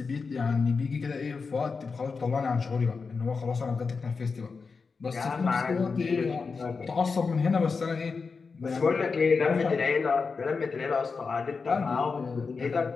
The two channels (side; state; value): right; quieter; 4.8 dB